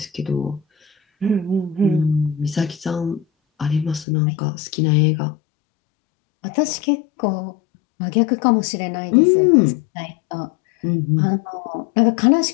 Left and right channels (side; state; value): right; drops out; at 4.0 s